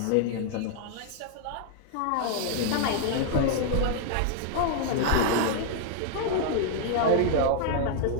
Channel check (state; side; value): different; both; correlation -0.01